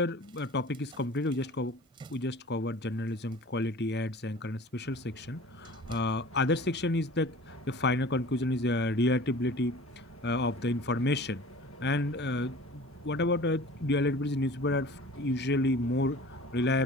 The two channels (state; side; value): normal; both; correlation 0.42